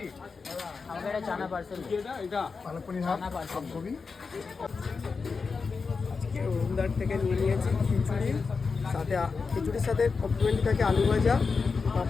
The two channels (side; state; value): right; quieter; 4.8 dB